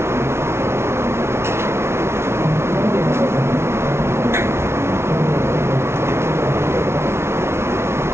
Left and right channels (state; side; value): late; left; 0.12 ms